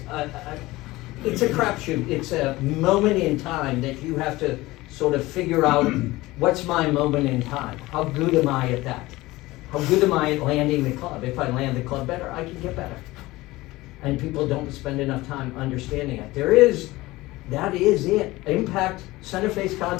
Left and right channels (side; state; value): right; quieter; 19.4 dB